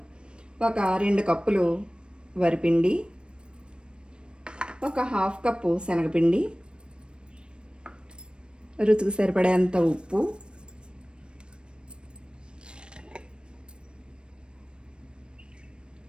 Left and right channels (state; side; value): late; left; 0.055 ms